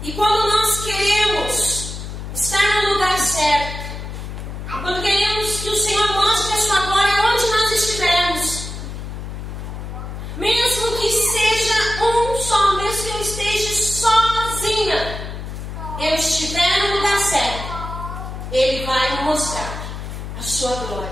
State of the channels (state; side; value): noise; left; hum, 8 dB below the sound